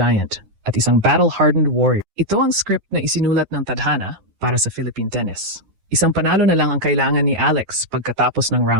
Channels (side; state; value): left; late; 9.6 ms